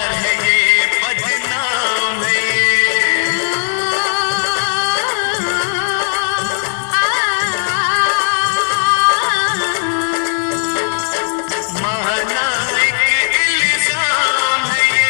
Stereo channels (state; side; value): silent; right; 57 dB below the other